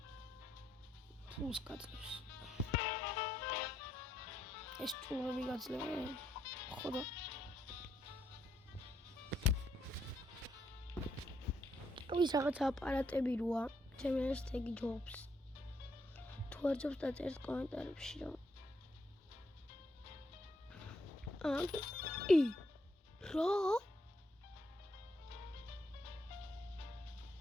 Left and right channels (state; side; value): normal; both; correlation 0.76